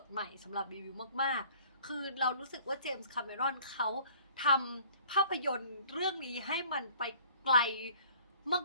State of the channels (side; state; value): both; inverted; correlation -0.52